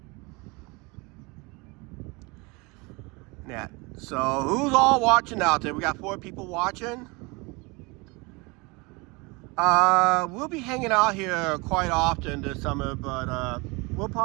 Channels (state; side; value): quieter; left; 26.7 dB